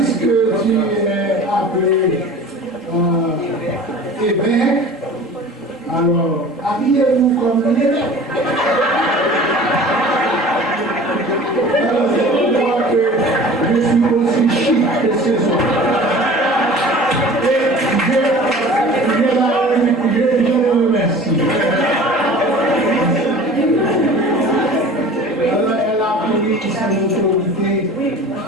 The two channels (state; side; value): normal; both; correlation 0.42